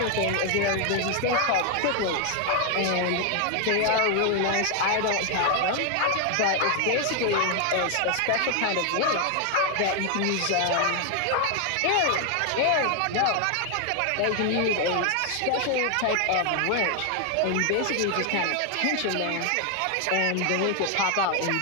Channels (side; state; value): both; different; correlation 0.01